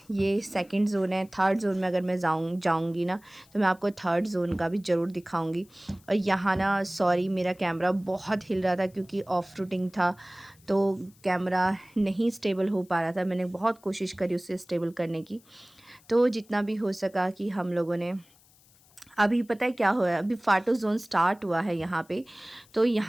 ये सेकंड ज़ोन है। थर्ड ज़ोन में अगर मैं जाऊँगी ना, तो मैं आपको थर्ड ज़ोन का भी ज़रूर दिखाऊंगी। और यहाँ ना, सॉरी, मेरा कैमरा बहुत हिल रहा था क्योंकि ऑफ रूटिंग था, तो कैमरा नहीं स्टेबल हो पा रहा था। मैंने बहुत कोशिश करी उसे स्टेबल करने की, तो जितना भी हो सका कि हम लोगों ने। अभी पता है क्या हुआ है, अभी फाटो जोन स्टार्ट हुआ है यहाँ पे। तो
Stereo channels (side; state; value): left; noise; hiss, 29 dB below the sound